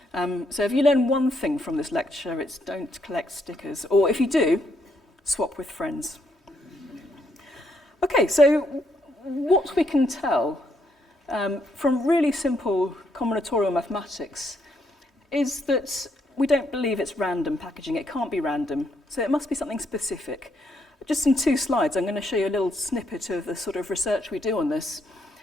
So if you learn one thing from this lecture, it's don't collect stickers. Or if you do, swap with friends. Okay, so what we can tell from really simple combinatorial mathematics is that we don't believe it's random packaging. It can't be random. So it must be something specific. Just in 2 slides, I'm going to show you a little snippet of the sort of research we do on this.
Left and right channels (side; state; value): both; normal; correlation 0.75